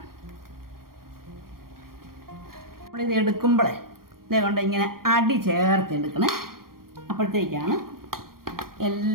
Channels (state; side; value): late; left; 0.92 ms